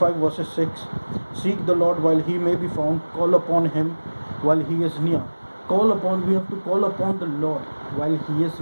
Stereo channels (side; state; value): both; inverted; correlation -1.00